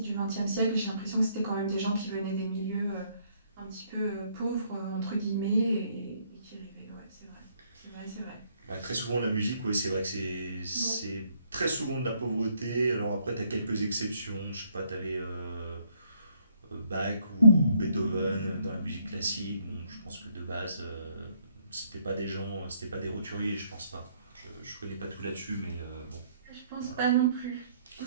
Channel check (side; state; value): both; inverted; correlation -0.68